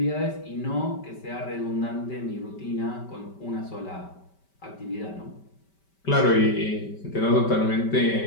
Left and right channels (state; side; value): late; right; 5.2 ms